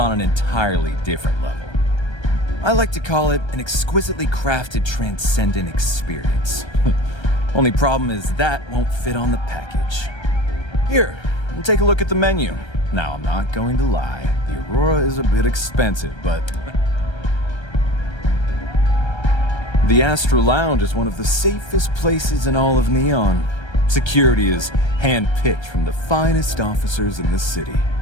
an entirely different level. I like to call it an exquisitely crafted, transcendent experience. Only problem is that won't fit on the package. Here, take a look at the menu. Now, I'm not going to lie. The Aurora is a bit expensive, but the Astral Lounge is one of the safest places in all of Neon. Security is hand-picked from the finest officers in the city.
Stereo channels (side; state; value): right; late; 1.3 ms